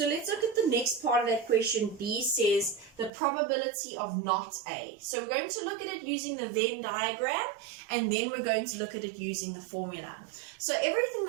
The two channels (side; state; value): left; drops out; at 3.1 s